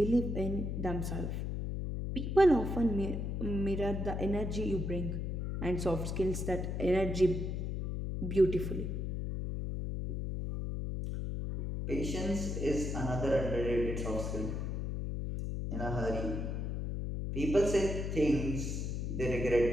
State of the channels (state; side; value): noise; left; hum, 2 dB below the sound